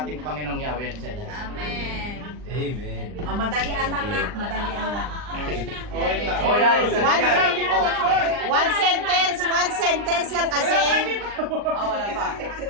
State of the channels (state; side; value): late; left; 39 ms